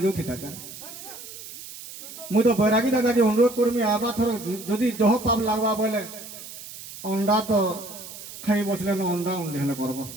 थी था मुई तो बैरागी दादा के अनुरोध करमी आबा थर जदि जह पाप लागवा बोले अंडा तो खाई बसले न अंडा उंडे हेले करबो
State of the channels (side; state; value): right; noise; hiss, 13 dB below the sound